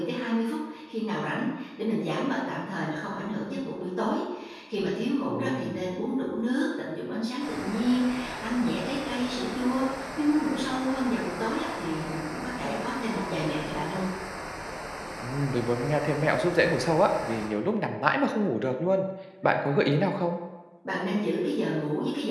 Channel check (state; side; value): identical; both; correlation 1.00